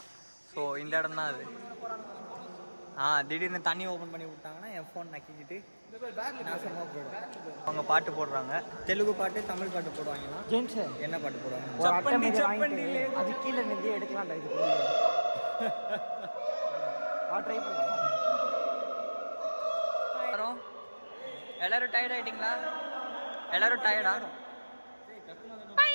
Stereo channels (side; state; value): both; inverted; correlation -1.00